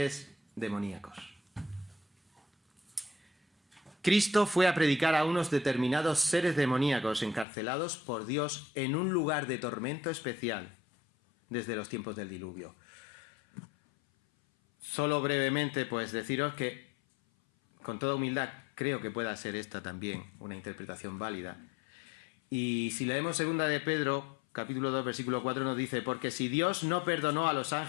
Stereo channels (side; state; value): right; drops out; at 7.5 s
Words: demoníacos. Cristo fue a predicar a unos determinados seres demoníacos encarcelados por Dios en un lugar de tormento especial desde los tiempos del diluvio. Solo brevemente, pues deciros que, con toda humildad, creo que pueda ser esta también una interpretación válida. Y si leemos 2 de Pedro, capítulo 2, versículo 4, nos dice: porque si Dios no perdonó a los